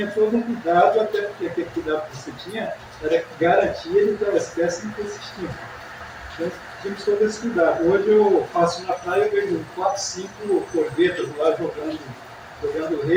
todo um cuidado, até porque aquele cuidado que você tinha era garantir ele da espécie não ter existido. Então tínhamos todo esse cuidado. Hoje eu passo na praia e vejo 4, 5 corvetas lá jogando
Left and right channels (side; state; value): both; identical; correlation 1.00